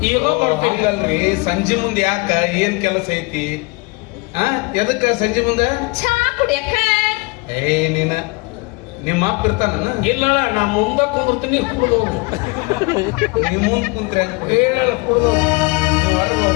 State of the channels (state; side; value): quieter; right; 26.4 dB